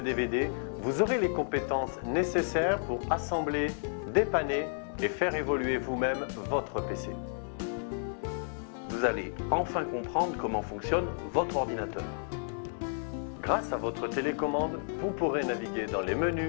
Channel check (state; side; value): silent; right; 57 dB below the other